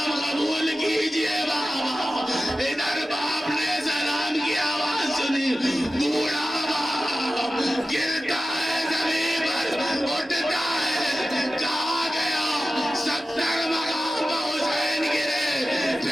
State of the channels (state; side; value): normal; both; correlation 0.94